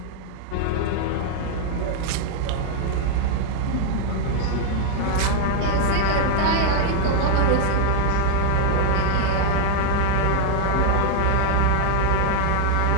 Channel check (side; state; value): both; different; correlation 0.00